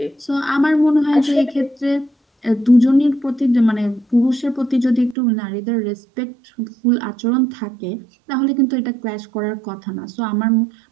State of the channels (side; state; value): left; drops out; at 5.2 s